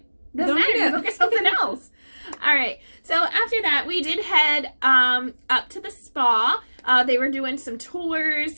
doesn't matter. You go get something else. All right. So after that, we did head up to the spa. They were doing some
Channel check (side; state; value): both; inverted; correlation -1.00